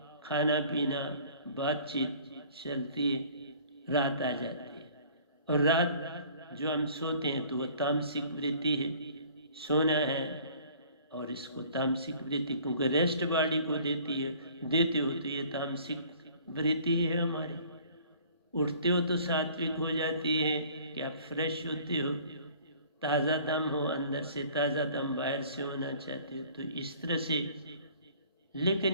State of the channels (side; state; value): both; inverted; correlation -0.52